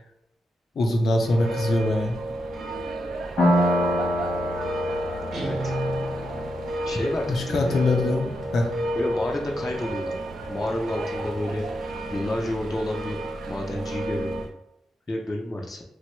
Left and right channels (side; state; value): both; normal; correlation 0.85